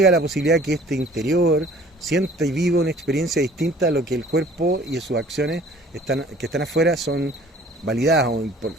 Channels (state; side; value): normal; both; correlation 0.52